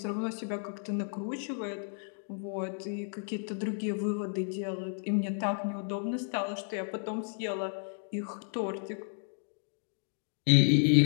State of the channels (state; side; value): silent; right; 56 dB below the other